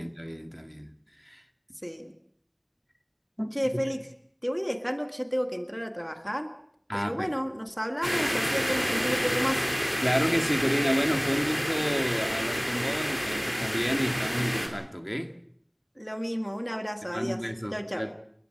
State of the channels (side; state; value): both; identical; correlation 1.00